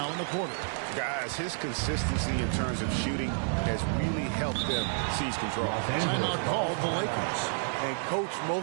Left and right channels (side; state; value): left; silent; 58 dB below the other